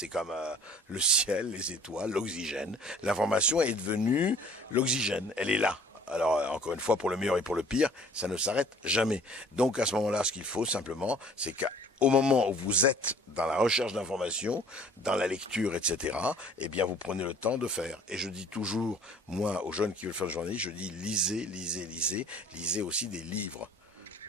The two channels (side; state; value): both; normal; correlation 0.52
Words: comme le ciel, les étoiles, l'oxygène. L'information est devenue l'oxygène. Elle est là. Alors, encore une fois, pour le meilleur et pour le pire, ça ne s'arrête jamais. Donc, à ce moment-là, ce qu'il faut simplement, c'est qu'au moment où vous êtes dans la recherche d'informations, dans la lecture, etc., eh bien, vous prenez le temps de faire. Et je dis toujours, moi, aux jeunes qui veulent faire le journalisme, je dis lisez, lisez, lisez. Lisez aussi des livres.